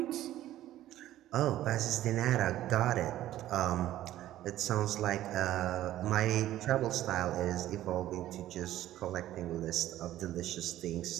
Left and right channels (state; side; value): quieter; left; 13.7 dB